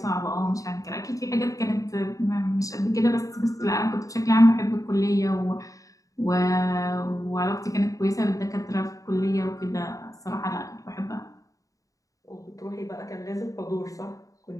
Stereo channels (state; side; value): late; right; 0.16 ms